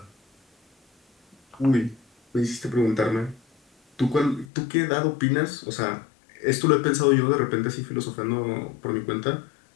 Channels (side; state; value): right; drops out; at 4.5 s